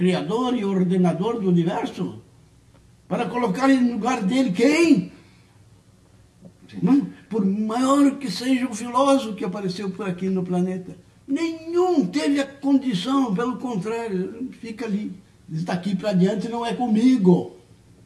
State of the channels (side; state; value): both; identical; correlation 1.00